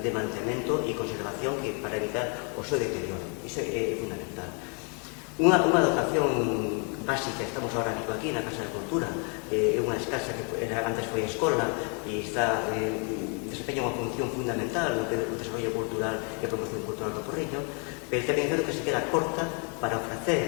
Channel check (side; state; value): right; quieter; 37.6 dB